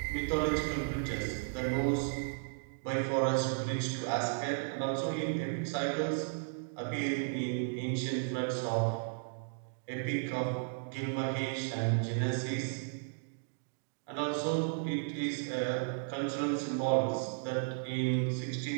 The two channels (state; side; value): silent; left; digital silence